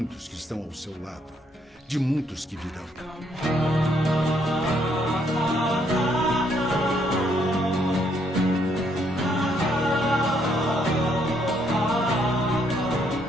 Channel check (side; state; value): both; normal; correlation 0.71